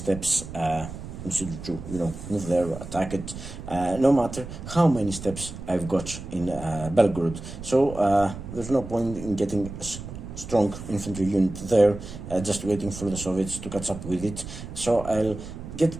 consider to, move there, attack it, no matter how many steps I've got in Belgorod. So, there's no point in getting a strong infantry unit there, just waiting for the Soviets to catch up with it. So, I'll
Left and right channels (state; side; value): noise; right; rumble, 11 dB below the sound